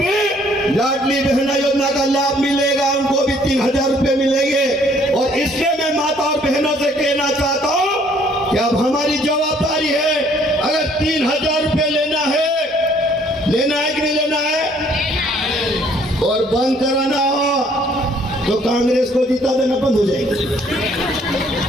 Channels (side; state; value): both; normal; correlation 0.62